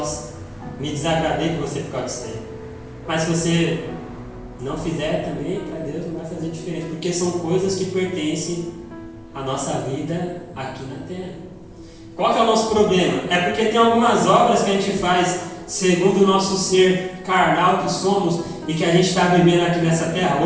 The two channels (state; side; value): identical; both; correlation 1.00